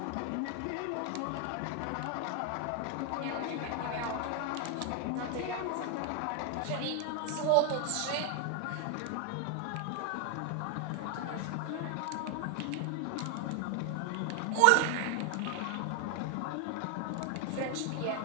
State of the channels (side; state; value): both; different; correlation 0.00